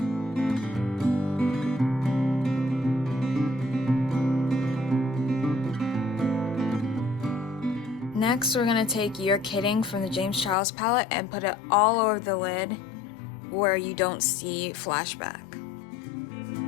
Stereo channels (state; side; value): drops out; right; at 10.6 s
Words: Next, we're going to take your kitting from the James Charles palette and put it all over the lid where you don't see flashback.